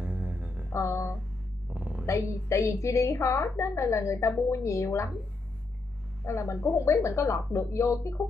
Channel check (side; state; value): right; quieter; 3.3 dB